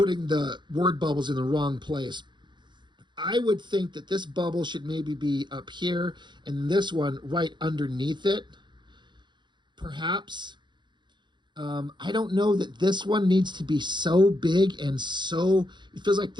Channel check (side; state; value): left; late; 0.22 ms